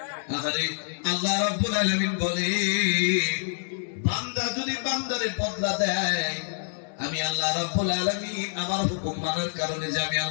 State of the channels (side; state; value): right; silent; digital silence